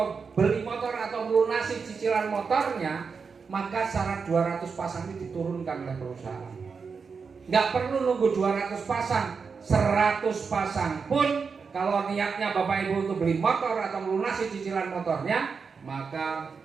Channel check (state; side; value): quieter; left; 5.4 dB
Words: beli motor atau melunasi cicilan motornya, maka syarat 200 pasang ini diturunkan oleh perusahaan. Nggak perlu nunggu 200 pasang, 100 pasang pun kalau niatnya Bapak Ibu untuk beli motor atau melunasi cicilan motornya, maka